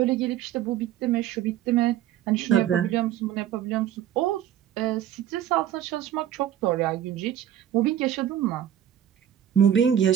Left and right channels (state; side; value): quieter; left; 10.9 dB